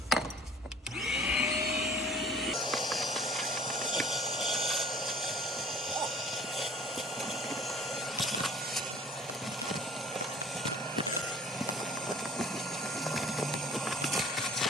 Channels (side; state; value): both; normal; correlation 0.50